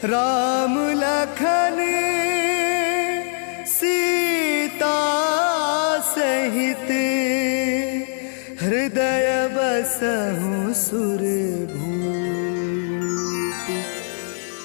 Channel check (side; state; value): right; silent; digital silence